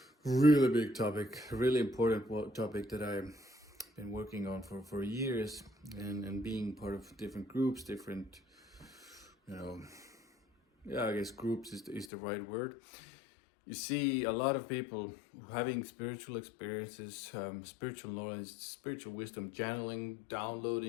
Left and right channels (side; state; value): right; drops out; at 12.1 s